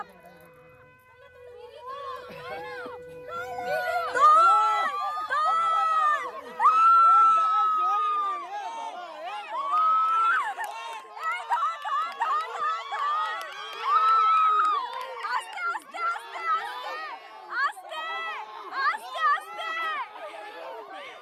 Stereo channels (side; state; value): both; identical; correlation 1.00